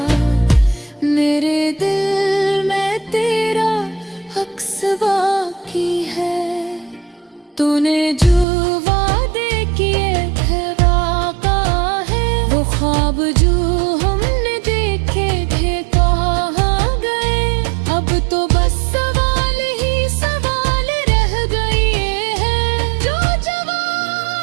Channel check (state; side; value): drops out; left; at 8.5 s